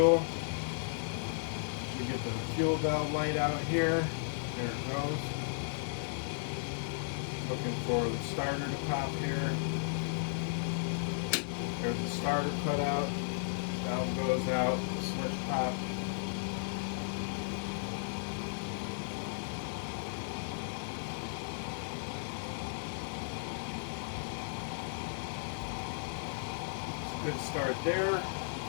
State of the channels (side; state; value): right; silent; 54 dB below the other